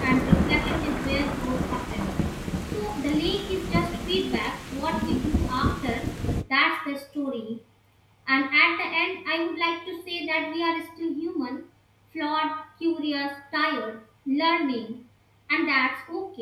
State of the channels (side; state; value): both; identical; correlation 1.00